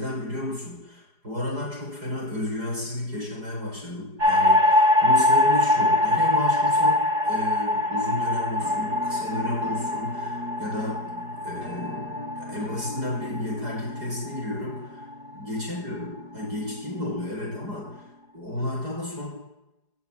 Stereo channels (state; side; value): late; left; 4.8 ms